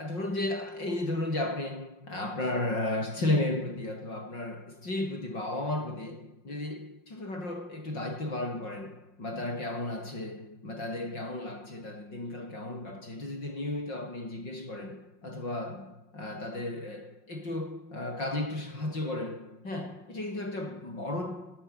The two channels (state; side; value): late; right; 5.6 ms